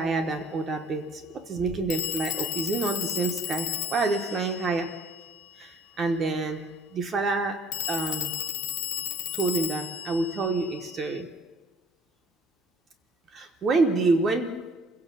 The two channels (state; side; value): normal; both; correlation 0.55